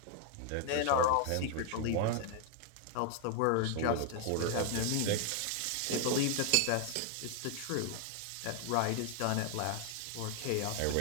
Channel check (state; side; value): different; both; correlation 0.00